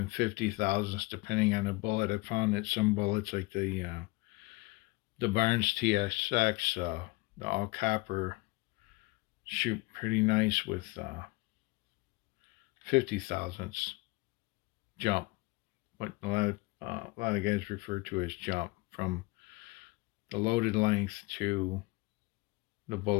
50,000ths depending on the bullet. I found that some bullets like the Barnes TSX, the all copper, shoot pretty nice with 50,000ths jump, what a lot of guys refer to as jump, from the loaded length to the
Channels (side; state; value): right; quieter; 23.8 dB